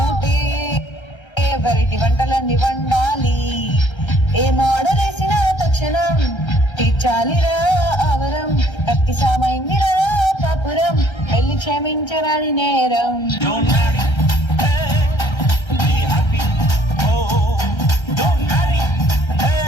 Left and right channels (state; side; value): late; right; 1.3 ms